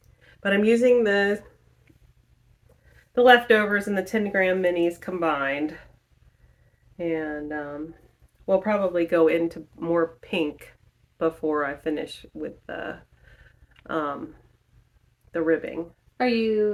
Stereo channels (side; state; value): both; identical; correlation 1.00